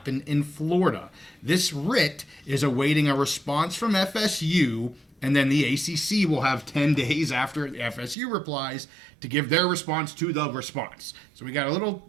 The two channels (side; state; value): left; drops out; at 8.2 s